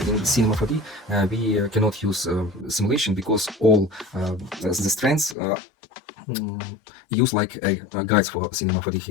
in Cinema 4D we cannot use simulation because all the strands use like guides for Cinema 4D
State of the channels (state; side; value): drops out; right; at 5.4 s